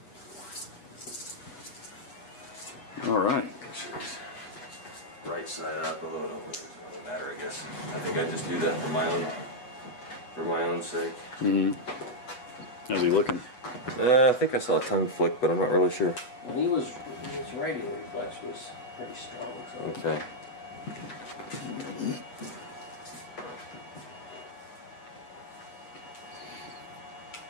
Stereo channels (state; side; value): late; right; 7.8 ms